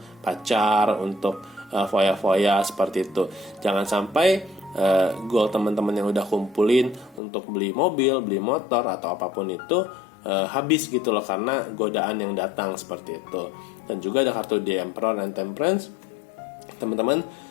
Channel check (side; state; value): right; drops out; at 7.2 s